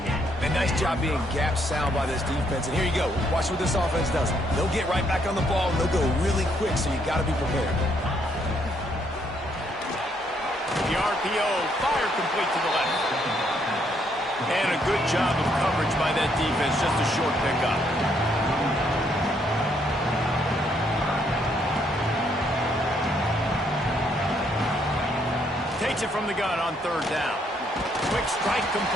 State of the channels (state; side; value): normal; both; correlation 0.71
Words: And nice job being gap sound by this defense. And here you go. Watch what this offense does. They'll get right back on the ball, and they'll go really quick, so you got to be prepared. The RPO, fire complete to the left. And a good job of coverage by that defense, just a short pickup. Takes it from the gun on third down. Quick strike